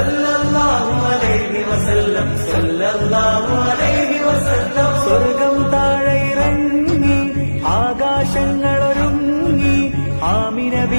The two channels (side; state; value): both; inverted; correlation -1.00